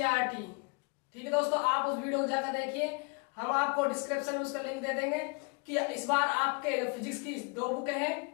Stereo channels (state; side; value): quieter; right; 32.5 dB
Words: ठीक है दोस्तों, आप उस वीडियो को जाकर देखिए। हम आपको डिस्क्रिप्शन में उसका लिंक दे देंगे कि इस बार आपके फिजिक्स की 2 बुक है